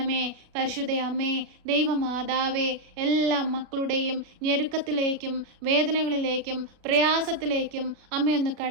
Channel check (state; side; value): late; left; 36 ms